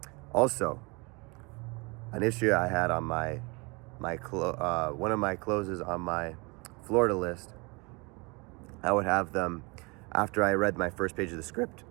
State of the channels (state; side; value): quieter; left; 28.3 dB